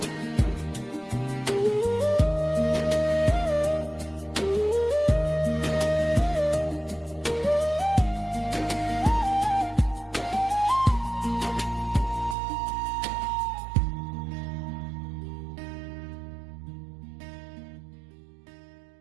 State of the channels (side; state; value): left; drops out; at 12.4 s